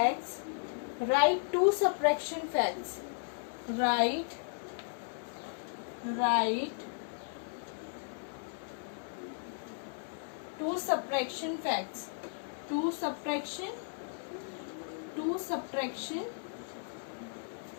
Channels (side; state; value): right; silent; digital silence